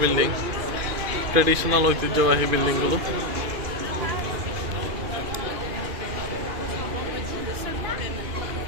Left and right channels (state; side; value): late; left; 2.4 ms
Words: বিল্ডিং, ট্রেডিশনাল ঐতিহ্যবাহী বিল্ডিং গুলো।